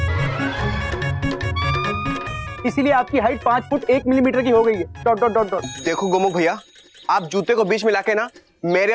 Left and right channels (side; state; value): both; identical; correlation 1.00